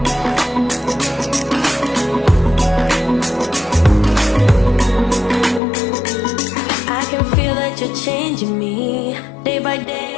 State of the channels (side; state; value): right; drops out; at 5.6 s